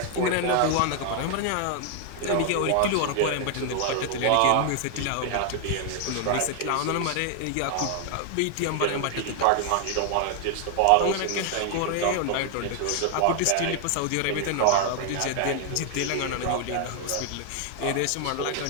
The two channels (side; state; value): both; different; correlation 0.00